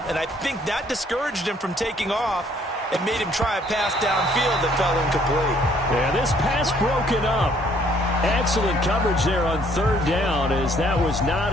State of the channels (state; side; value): normal; both; correlation 0.63